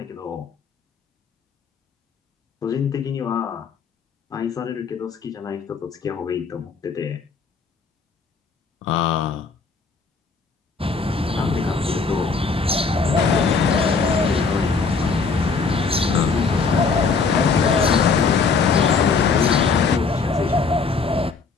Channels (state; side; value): quieter; right; 4.8 dB